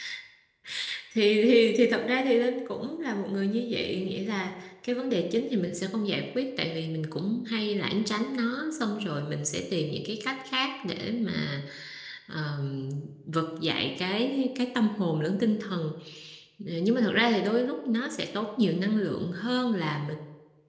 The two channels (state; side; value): identical; both; correlation 1.00